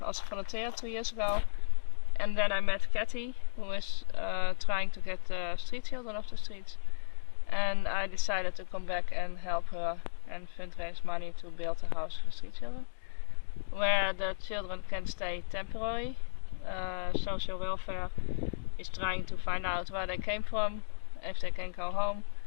as a volunteer 2 years ago, and then I met Kathy, who is trying to get street children off the streets, and I decided to come back and help her and fundraise money to build a house for street children, where the children can stay temporary. Social welfare is trying to find out where they came from, if they can go home,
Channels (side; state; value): right; silent; digital silence